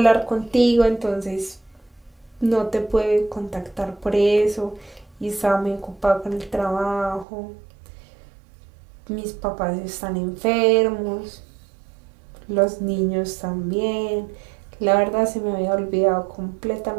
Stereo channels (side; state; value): left; drops out; at 7.2 s